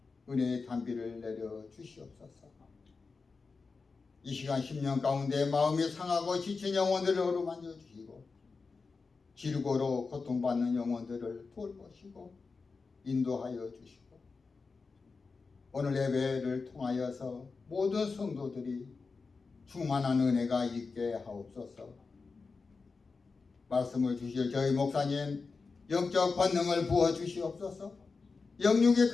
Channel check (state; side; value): quieter; right; 4.5 dB